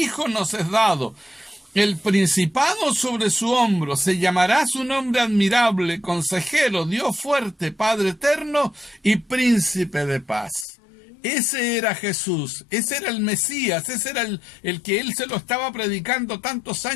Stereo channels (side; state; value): right; drops out; at 10.7 s